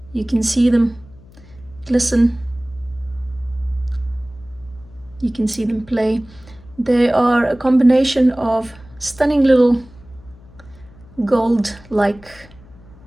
You can see them glisten, you can see them play. They are a combination of stunning little gold, like,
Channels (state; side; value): noise; left; hum, 23 dB below the sound